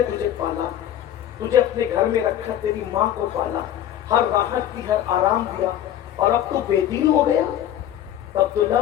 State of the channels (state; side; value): quieter; right; 11.4 dB